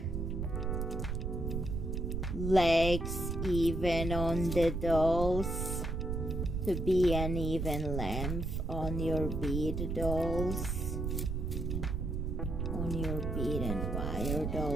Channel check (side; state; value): right; noise; rumble, 2 dB below the sound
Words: legs even on the dolls, to be an even length on your bead dolls, on your bead and wire